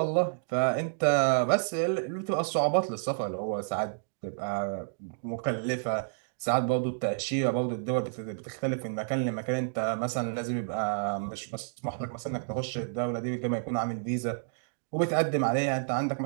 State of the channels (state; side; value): silent; left; digital silence